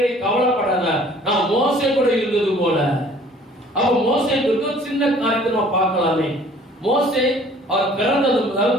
நீ கவலைப்படாத, நான் மோசே கூட இருந்தது போல. அப்ப மோசேக்கு சின்ன காரியத்தை நம்ம பார்க்கலாமே. மோசே அவர் பிறந்தது முதல்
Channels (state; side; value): normal; both; correlation 0.53